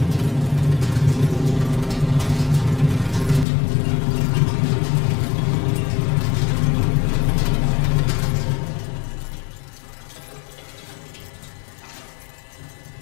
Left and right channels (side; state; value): right; drops out; at 3.5 s